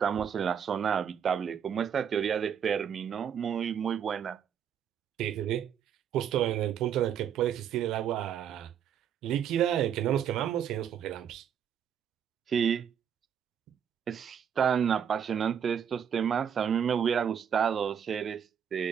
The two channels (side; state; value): left; quieter; 8.4 dB